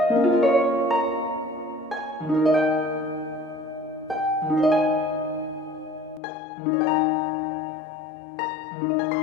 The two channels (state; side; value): drops out; right; at 6.2 s